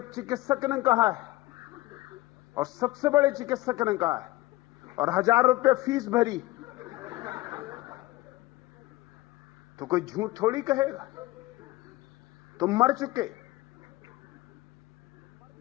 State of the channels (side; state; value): right; quieter; 18.8 dB